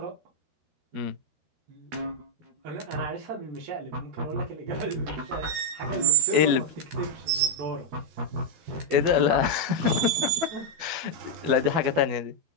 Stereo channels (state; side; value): late; left; 12 ms